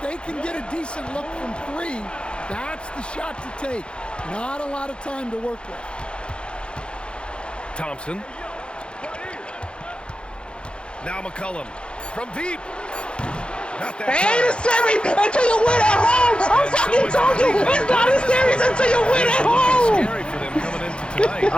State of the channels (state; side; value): late; right; 0.055 ms